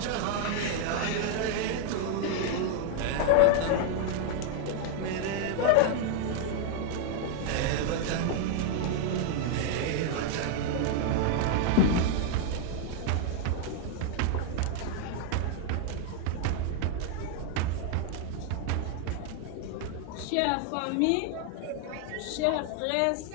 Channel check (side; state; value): both; different; correlation 0.00